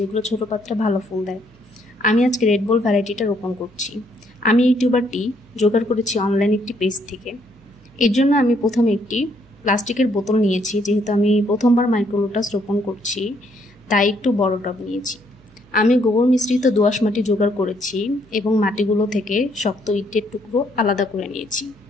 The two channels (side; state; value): right; noise; hum, 28 dB below the sound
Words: ছোট পাত্রে ভালো ফুল দেয়। আমি আজকে রেড বল ভ্যারাইটিটা রোপণ করছি। আমি এই টিউবারটি জোগাড় করেছি অনলাইন একটি পেজ থেকে। এর জন্য আমি প্রথমে একটি প্লাস্টিকের বোতল নিয়েছি, যেহেতু আমি প্রথমবার মাইক্রো লোটাস রোপণ করছি তাই একটু বড় টব নিয়েছি। আমি গোবর মিশ্রিত দোআঁশ মাটি জোগাড় করেছি এবং মাটিগুলো থেকে শক্ত ইটের টুকরো আলাদা করে নিয়েছি।